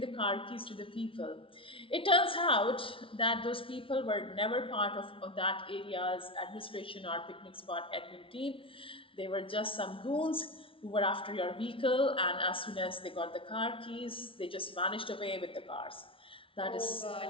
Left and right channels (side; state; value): right; late; 0.25 ms